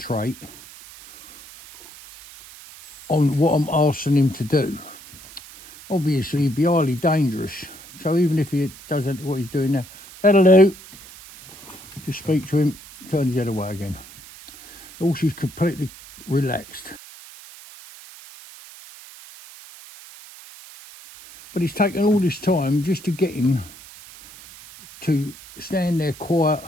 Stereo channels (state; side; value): noise; right; hiss, 19 dB below the sound